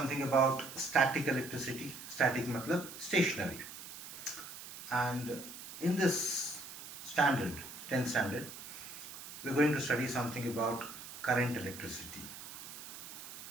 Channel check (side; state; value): right; noise; hiss, 12 dB below the sound